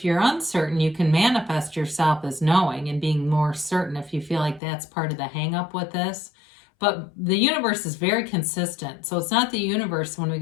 you're uncertain, you can manifest yourself as knowing and being more certain if you feel like that's part of the hang up with this. But the universe is very consistent. So it's not the universe when we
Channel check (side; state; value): right; drops out; at 4.6 s